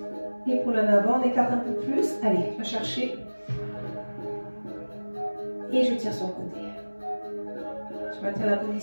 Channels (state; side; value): inverted; both; correlation -1.00